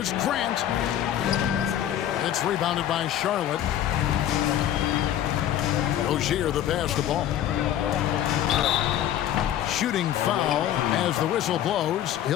Grant. It's rebounded by Charlotte. Rozier the pass to ball. Shooting foul as the whistle blows.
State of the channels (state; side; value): quieter; right; 11.4 dB